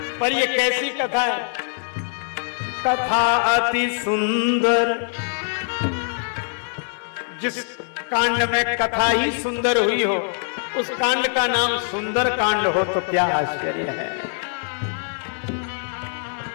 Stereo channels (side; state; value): right; silent; 60 dB below the other